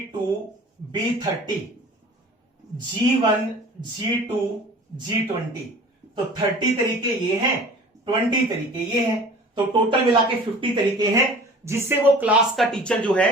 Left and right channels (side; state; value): both; normal; correlation 0.44